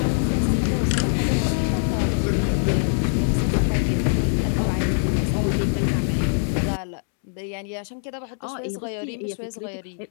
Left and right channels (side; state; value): right; silent; digital silence